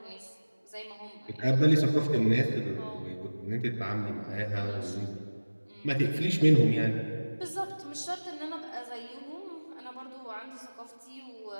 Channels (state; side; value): inverted; both; correlation -1.00